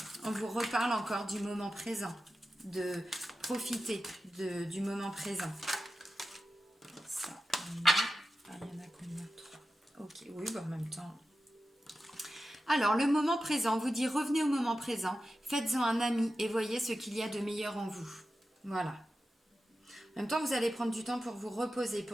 on vous reparle encore du moment présent, de profiter du moment présent. Ça, il y en a combien? 3. Ok, oui, bah en même temps. Alors, le moment présent, vous dit revenez au moment présent, faites-en un ami et voyez ce qu'il y a de meilleur en vous. Voilà. En même temps, vous allez prendre du temps pour vous reposer,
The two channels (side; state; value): both; normal; correlation 0.92